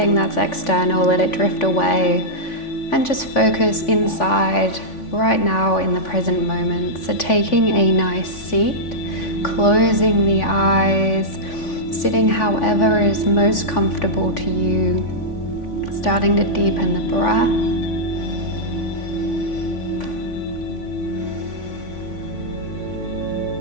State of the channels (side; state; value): right; late; 3.5 ms